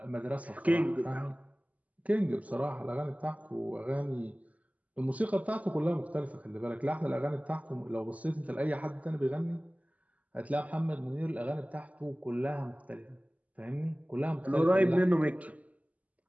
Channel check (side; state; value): left; late; 0.072 ms